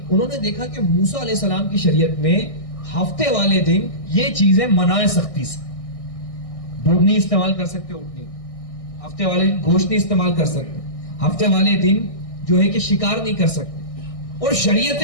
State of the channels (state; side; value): late; right; 1.6 ms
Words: انہوں نے دیکھا کہ موسیٰ علیہ السلام کی شریعت میں ہفتے والے دن یہ چیزیں منع سختی سے, دودھ نہیں استعمال کر سکتے, اونٹ نہیں, ہفتے والے دن گوشت نہیں استعمال کر سکتے, ہفتے والے دن جو ہے کہ شکار نہیں کر سکتے. اور